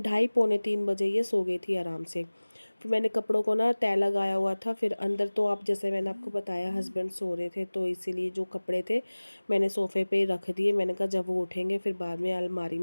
बजे ये सो गई थी आराम से। फिर मैंने कपड़ों को ना तय लगाया हुआ था, फिर अंदर तो आप जैसे मैंने आपको बताया हस्बैंड सो रहे थे, तो इसीलिए जो कपड़े थे मैंने सोफ़े पे रख दिए। मैंने कहा जब वो उठेंगे फिर बाद में अलमारी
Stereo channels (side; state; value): both; inverted; correlation -1.00